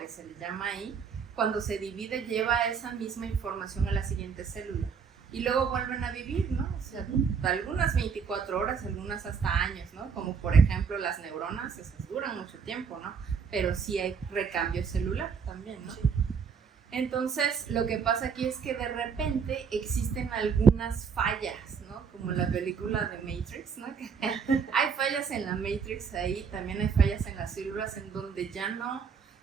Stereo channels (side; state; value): left; quieter; 6.3 dB